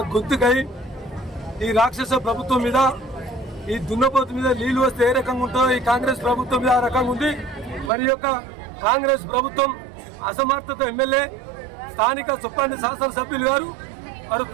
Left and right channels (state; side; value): drops out; left; at 7.9 s